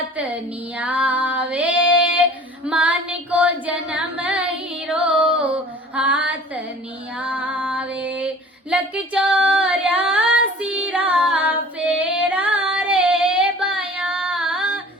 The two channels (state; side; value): normal; both; correlation 0.46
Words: नियावे, मान को जन्म हीरो हाथ नियावे, लक 84 रा फेरा रे बाया,